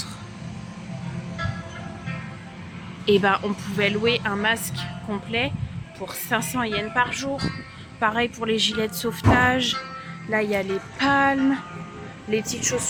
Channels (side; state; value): both; identical; correlation 1.00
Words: Et on pouvait louer un masque complet pour 500 yens par jour. Pareil pour les gilets de sauvetage. Là il y a les palmes, les petites